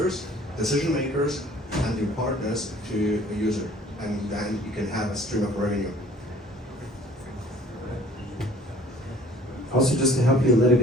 decision makers, and the partners to the user, and then you can have a stream of revenue. Also, just to help you a little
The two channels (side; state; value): both; normal; correlation 0.52